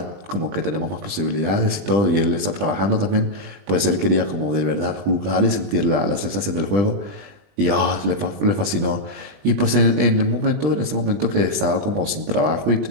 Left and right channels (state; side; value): late; left; 20 ms